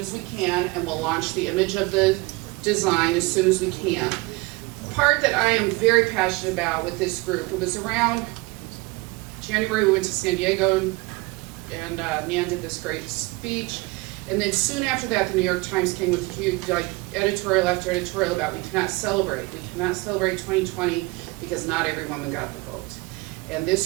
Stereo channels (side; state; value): left; quieter; 23.6 dB